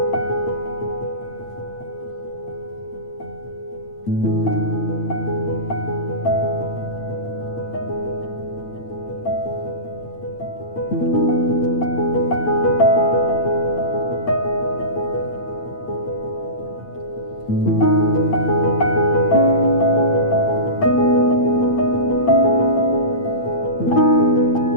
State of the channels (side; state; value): right; late; 8.8 ms